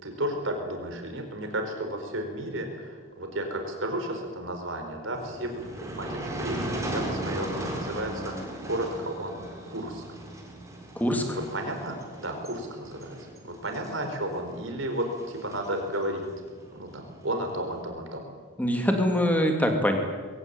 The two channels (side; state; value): both; normal; correlation 0.34